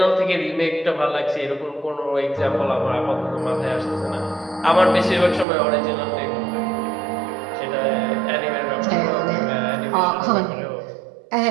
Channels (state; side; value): drops out; left; at 5.5 s